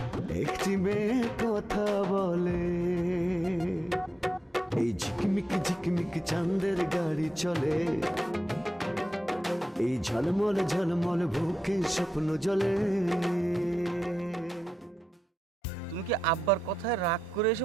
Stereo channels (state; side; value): normal; both; correlation 0.88